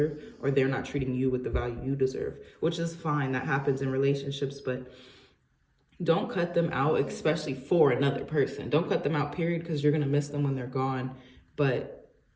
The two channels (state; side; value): identical; both; correlation 1.00